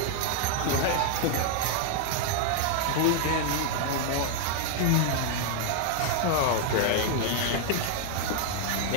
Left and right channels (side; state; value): both; different; correlation 0.00